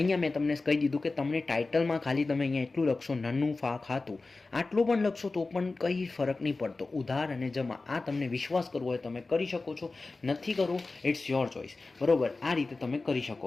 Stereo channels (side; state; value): right; quieter; 3.6 dB